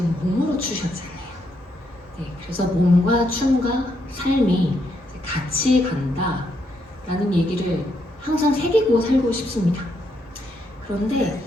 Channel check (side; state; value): both; normal; correlation 0.77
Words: 몸으로 추셨잖아요. 네, 그래서 몸과 춤과 삶이 같이 간다라는 얘기를 항상 새기고 살고 싶습니다. 그런데